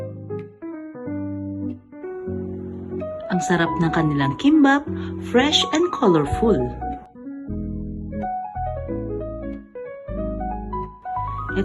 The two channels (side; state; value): both; identical; correlation 1.00